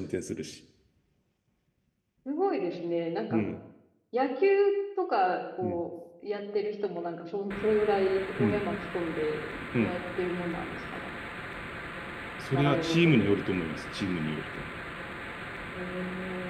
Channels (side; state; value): both; identical; correlation 1.00